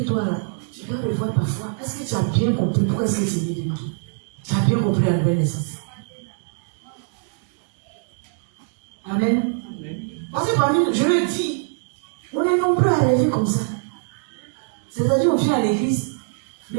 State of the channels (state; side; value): silent; left; 63 dB below the other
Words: toi là, tu dois revoir ta foi. Est-ce que tu as bien compris pourquoi est-ce que tu es né de nous? Tu as bien compris la nouvelle naissance. Amen. Parce que parmi nous, je le dis, on est nombreux à rêver comme ça. C'est-à-dire, on vient à l'église,